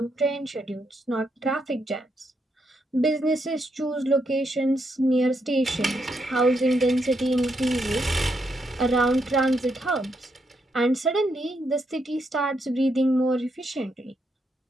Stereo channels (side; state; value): both; normal; correlation 0.79